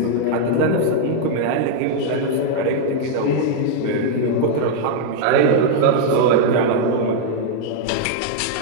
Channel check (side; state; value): both; different; correlation 0.00